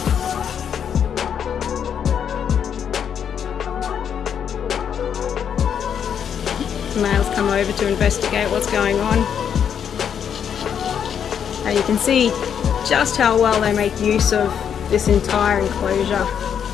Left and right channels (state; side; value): quieter; right; 8.1 dB